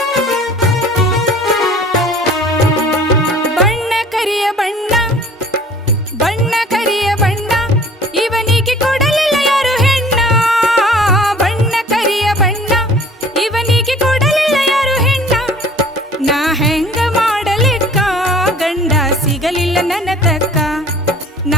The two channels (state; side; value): normal; both; correlation 0.50